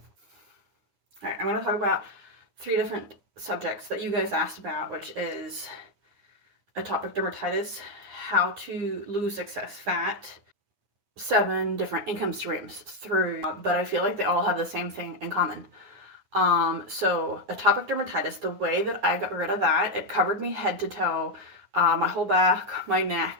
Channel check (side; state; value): left; late; 9.6 ms